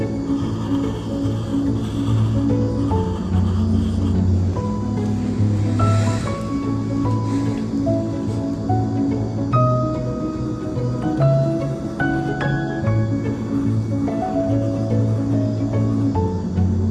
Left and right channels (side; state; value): both; identical; correlation 1.00